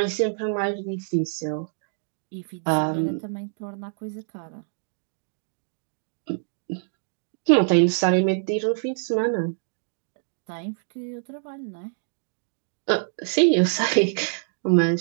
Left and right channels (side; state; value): left; silent; digital silence